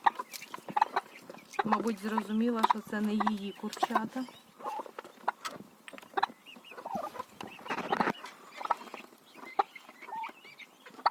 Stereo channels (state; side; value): identical; both; correlation 1.00